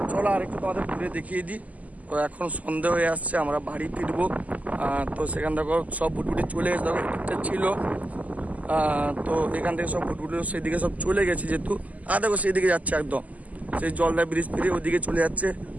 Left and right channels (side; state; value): left; late; 0.075 ms